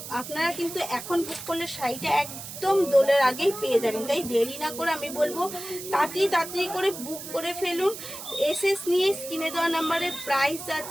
আপনারা কিন্তু এখন বুক করলে শাড়িটা একদম দোলের আগেই পেয়ে যাবেন, তাই দেরি না করে আমি বলবো তাড়াতাড়ি করে বুক করে ফেলুন। এসএস নিয়ে স্ক্রিনে দেওয়া নাম্বারে প্রাইস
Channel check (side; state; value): right; noise; hiss, 10 dB below the sound